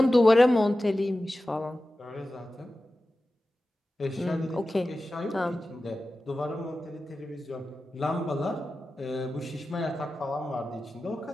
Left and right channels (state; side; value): normal; both; correlation 0.94